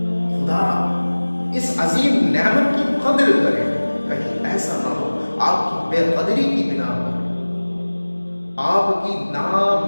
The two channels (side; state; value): both; inverted; correlation -1.00